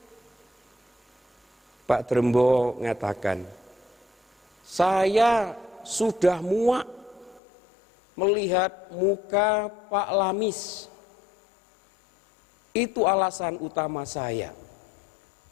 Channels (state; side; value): drops out; right; at 7.4 s